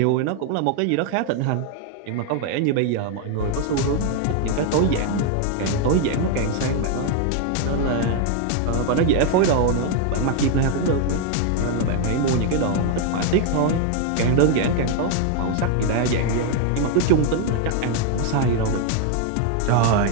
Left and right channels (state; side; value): different; both; correlation 0.00